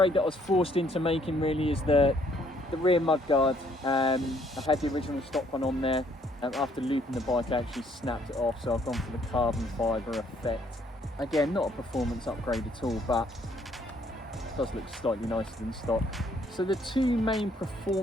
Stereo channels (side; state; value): both; normal; correlation 0.65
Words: that I was forced into making really is the rear mudguard. I had the original stock one on there. After looping the bike, I actually snapped it off, so I've gone for the carbon fibre effect. Again, not a performance upgrade at all, but it does look slightly nicer than stock. So the two main